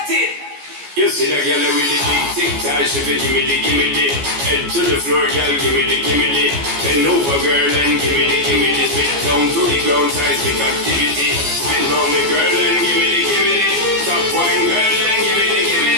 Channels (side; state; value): left; late; 14 ms